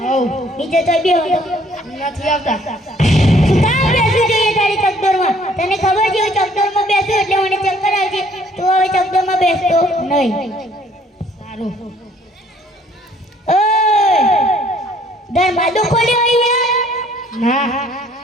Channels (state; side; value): normal; both; correlation 0.60